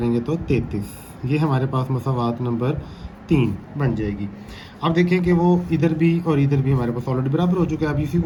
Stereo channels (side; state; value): both; identical; correlation 1.00